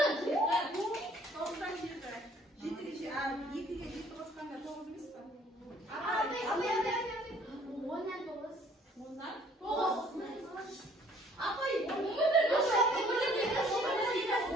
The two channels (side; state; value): both; normal; correlation 0.58